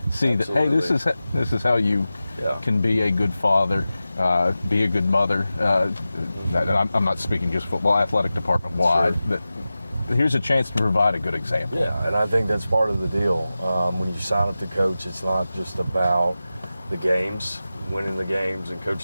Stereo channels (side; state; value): both; inverted; correlation -0.95